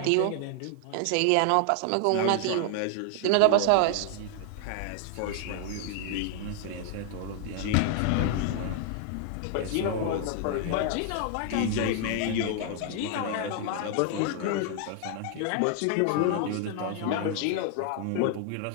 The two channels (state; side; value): different; both; correlation 0.00